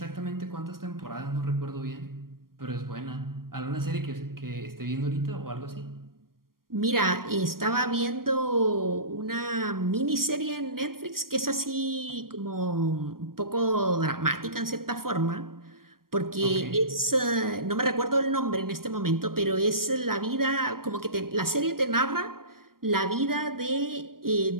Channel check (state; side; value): late; left; 0.92 ms